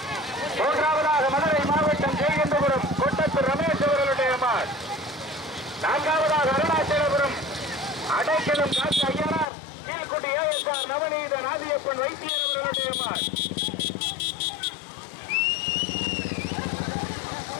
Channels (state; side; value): drops out; right; at 9.5 s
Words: மூன்றாவதாக மதுரை மாவட்டம் ஜெயகந்தபுரம் கொட்டத்தூர் ரமேஷ் அவர்களுடைய நான்காவதாக அருணாச்சலபுரம் அடைக்கலம் காசி ஐயனார் கீழ்குடி ASR நவநீத நாதியப்பன் வைத்தியர் அவர்களுடைய